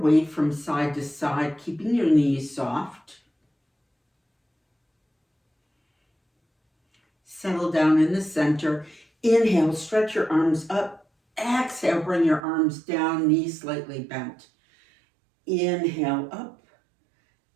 from side to side, keeping your knees soft. Settle down in the center. Inhale, stretch your arms up. Exhale, bring your arms down, knees slightly bent. Inhale up.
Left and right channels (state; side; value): drops out; left; at 12.4 s